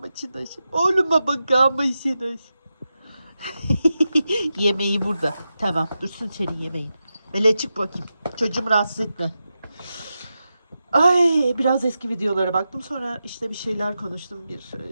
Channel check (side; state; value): both; inverted; correlation -0.90